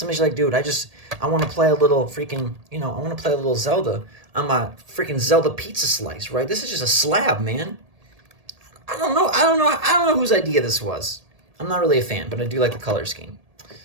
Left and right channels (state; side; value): late; left; 1.8 ms